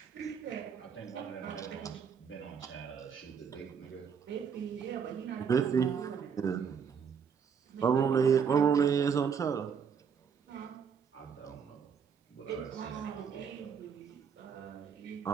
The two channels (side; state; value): left; quieter; 6.8 dB